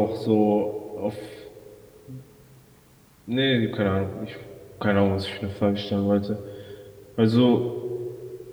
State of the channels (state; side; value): identical; both; correlation 1.00